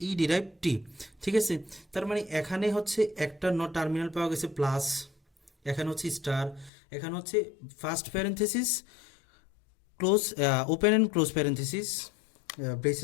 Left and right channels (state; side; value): drops out; right; at 6.7 s